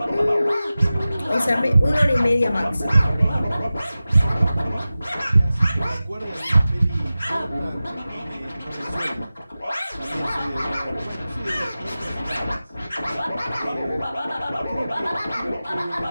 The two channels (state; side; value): inverted; both; correlation -0.96